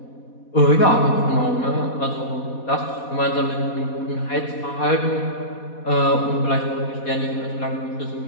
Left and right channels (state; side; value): late; right; 4.1 ms